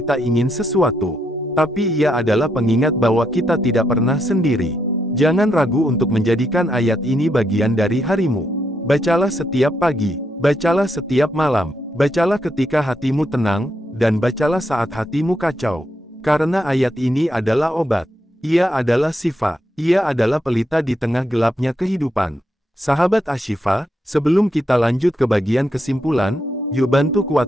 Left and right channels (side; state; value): both; normal; correlation 0.79